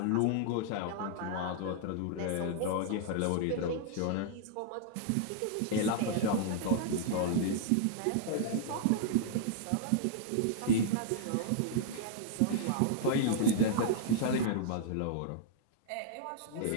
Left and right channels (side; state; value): both; different; correlation -0.01